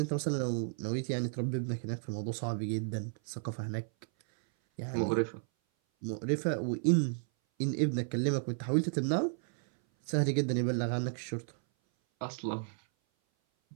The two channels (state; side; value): silent; left; 56 dB below the other